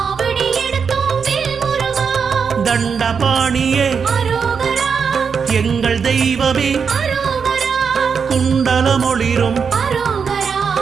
தண்டபாணியே எங்கள் தெய்வமே குண்டலமொளிரும்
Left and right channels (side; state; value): left; quieter; 6.1 dB